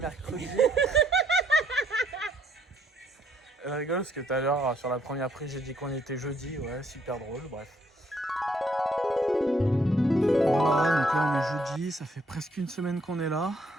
Elle rigole parce que tout à l'heure sur la première prise j'ai dit qu'on était jeudi, ouais, super drôle, bref. Voilà, donc là on est jeudi, ça fait presque une semaine qu'on est là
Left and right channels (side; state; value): both; normal; correlation 0.68